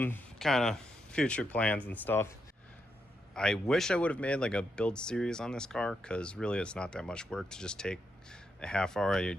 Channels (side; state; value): both; normal; correlation 0.82